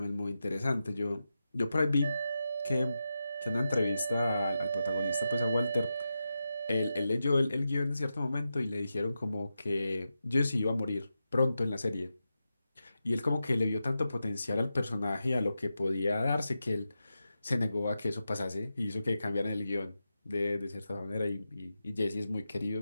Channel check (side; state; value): both; inverted; correlation -0.90